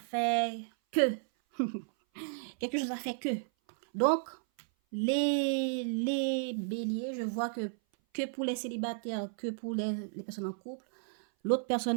que. Quelque chose a fait que. Donc, les béliers, je vois que pour les célibataires, que pour les personnes en couple, l'autre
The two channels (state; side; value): silent; left; 56 dB below the other